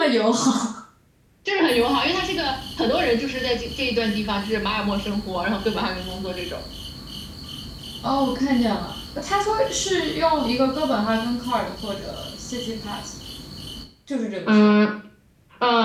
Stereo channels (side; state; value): both; identical; correlation 1.00